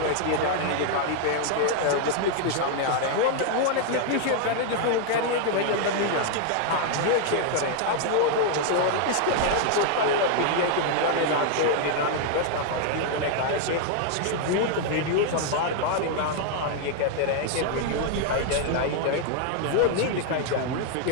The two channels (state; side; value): different; both; correlation 0.00